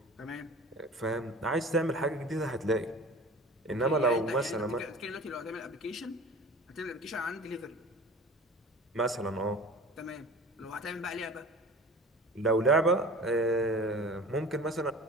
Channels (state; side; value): normal; both; correlation 0.40